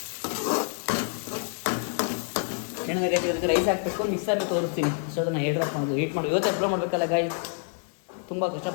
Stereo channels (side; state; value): right; silent; 58 dB below the other